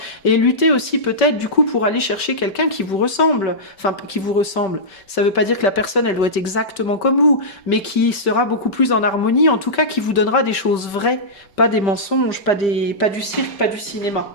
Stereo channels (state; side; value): late; right; 5.2 ms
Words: et luttez aussi peut-être du coup pour aller chercher quelqu'un qui vous ressemble. Enfin, qui vous ressemble. Ça ne veut pas dire que la personne elle doit être exactement comme vous, mais qui sera beaucoup plus en harmonie, en tout cas qui vous donnera des choses vraies, pas des mensonges, pas du cirque, pas du cinéma.